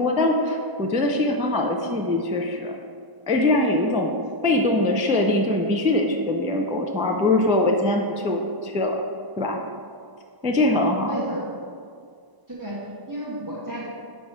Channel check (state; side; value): late; left; 1.0 ms